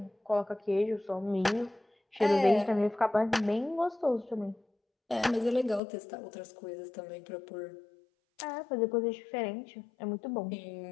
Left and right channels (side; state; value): right; drops out; at 5.8 s